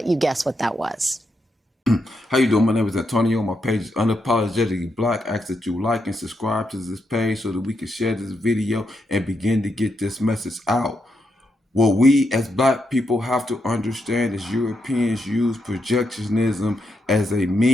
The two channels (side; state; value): both; normal; correlation 0.82